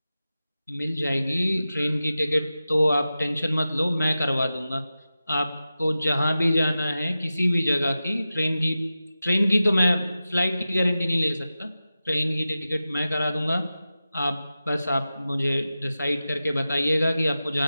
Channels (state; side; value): inverted; both; correlation -0.94